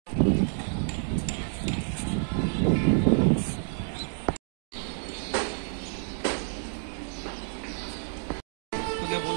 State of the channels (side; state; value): left; silent; digital silence